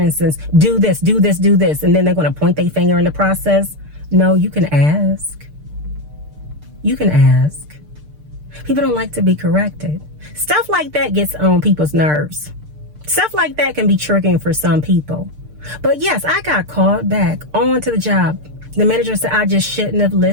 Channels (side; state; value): left; late; 6.7 ms